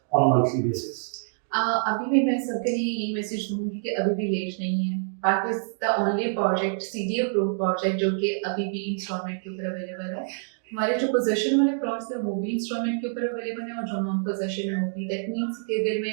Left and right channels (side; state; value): left; silent; digital silence